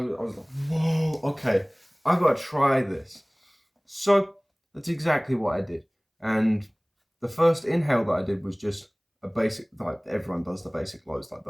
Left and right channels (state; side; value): identical; both; correlation 1.00